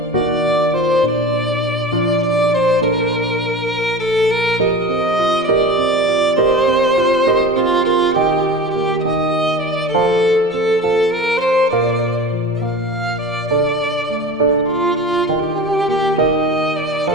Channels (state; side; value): normal; both; correlation 0.34